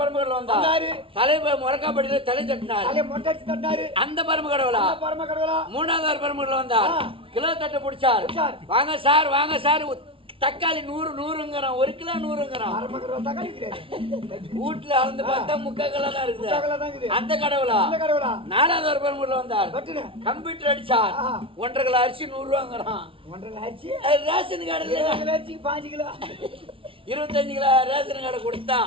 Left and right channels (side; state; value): left; late; 0.26 ms